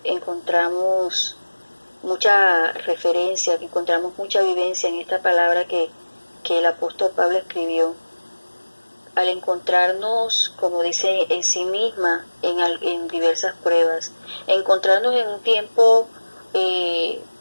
encontramos mucha referencia, encontramos mucha vivencia en esta palabra que el apóstol Pablo escribió. Al encontrarnos, como dice en sí misma, en diversas pruebas, encontrarnos en un tiempo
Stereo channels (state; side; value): inverted; both; correlation -1.00